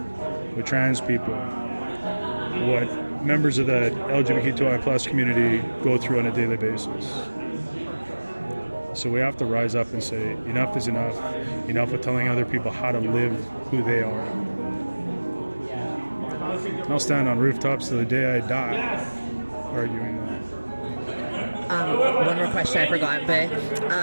With trans people, what members of the LGBTQI plus community go through on a daily basis. So we have to rise up and say, enough is enough. Enough of telling other people how to live who they are. I'll stand on rooftops till the day I die arguing that. One more question I forgot,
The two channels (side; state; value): both; inverted; correlation -1.00